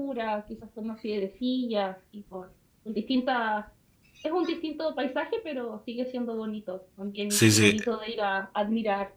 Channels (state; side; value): identical; both; correlation 1.00